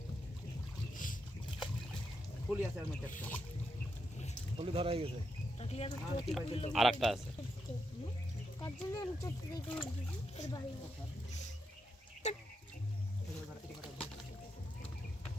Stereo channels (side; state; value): both; normal; correlation 0.83